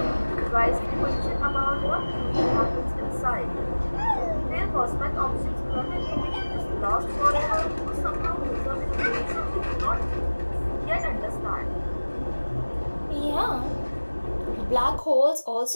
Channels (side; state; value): both; inverted; correlation -1.00